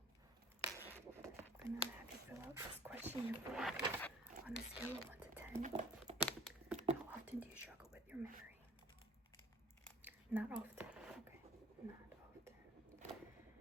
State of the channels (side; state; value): both; normal; correlation 0.50